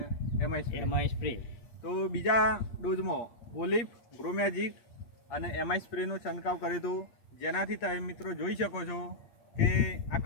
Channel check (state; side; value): late; right; 8.6 ms